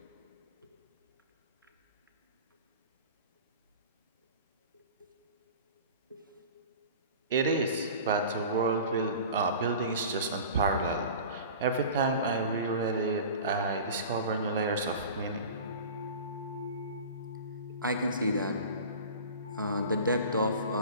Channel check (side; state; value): both; inverted; correlation -0.38